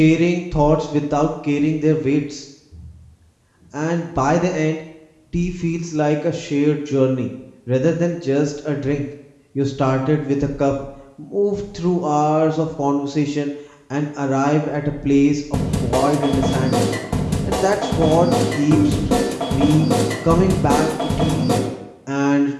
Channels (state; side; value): identical; both; correlation 1.00